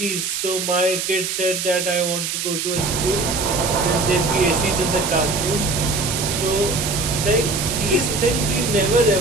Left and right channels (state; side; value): noise; right; hiss, 3 dB below the sound